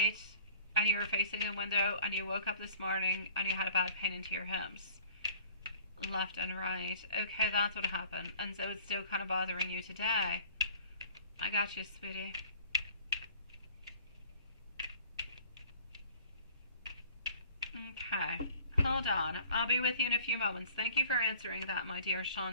and you were facing a window and you woke up this morning and you had a bad pain into your hips, left and right. Okay, that's what happened. And so it's still kind of bothering you today. I got you, sweetie. Okay, hold on. I'll be with you in a few moments. Thank you for answering that, my dear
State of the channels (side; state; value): both; inverted; correlation -0.50